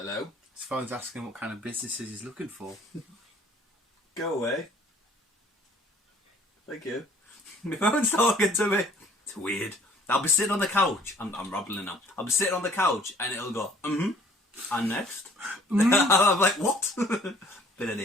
His phone's asking what kind of businesses he's looking for. Go away. Thank you. My phone's talking to me. It's weird. I'll be sitting on the couch. I'm rambling now. I'll be sitting on the couch and it'll go, and next. I'm like, what? But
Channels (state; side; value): normal; both; correlation 0.56